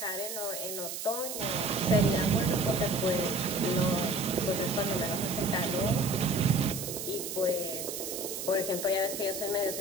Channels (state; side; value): noise; right; hiss, 6 dB below the sound